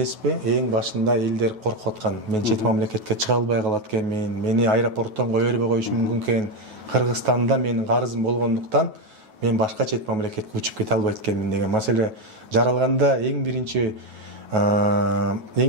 эң башында элдер коркуп аткан. Мен чет мамлекетке чыга албай калат экенмин, мени аэропорттон кое бербей коюшу мүмкүн экен. Кыргызстанда менин карызым болгондуктан мен башка чет мамлекетке учуп кете албайт экенмин деген маселе жаралганда эң биринчи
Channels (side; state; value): left; late; 9.3 ms